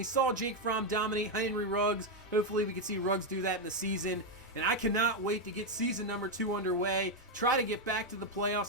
saw Jake Fromm dominate Henry Ruggs. Hopefully we can see Ruggs do that in the season. And I cannot wait to get season number 2 underway, try to get back to the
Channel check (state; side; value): normal; both; correlation 0.03